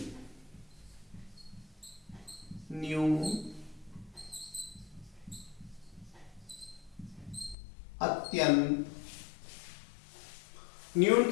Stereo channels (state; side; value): drops out; right; at 7.6 s